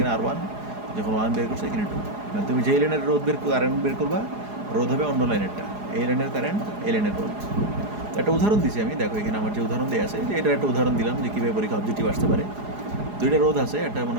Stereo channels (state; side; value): late; left; 4.8 ms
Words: R1, যখন 1 বের করছো এখানে 2। মানে তুমি যেই লাইনের কারেন্ট বের করবা, রোধ হবে অন্য লাইনেরটা, এই লাইনের কারেন্ট এই লাইনের রোধ। একটা উদাহরণ দিচ্ছি আমি, দেখো এখানে আমার যে উদাহরণ দেওয়া আছে, যে এটার একটা উদাহরণ দিলাম যে কীভাবে পরীক্ষা অবজেক্টিভ আসতে পারে। দুইটা রোধ আছে, একটা